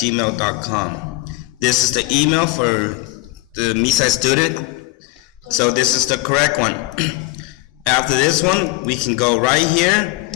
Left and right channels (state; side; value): quieter; right; 20.1 dB